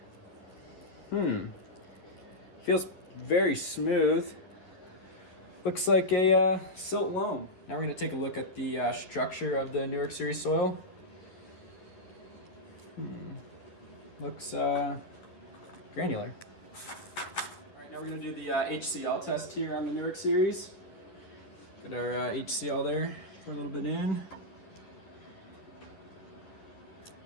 feels very smooth. Looks like a silt loam. Now we're going to take a look at the structure of the Newark Series soil. Looks granular. All right, now we're going to do the HCl test here on the Newark Series. Got our HCl there, pour a little bit in.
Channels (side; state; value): right; late; 11 ms